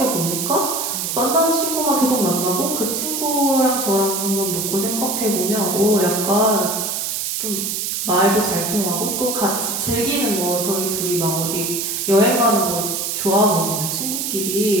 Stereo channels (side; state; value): right; noise; hiss, 2 dB below the sound